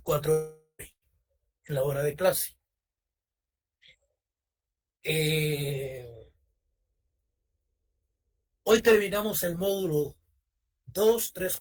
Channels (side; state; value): both; identical; correlation 1.00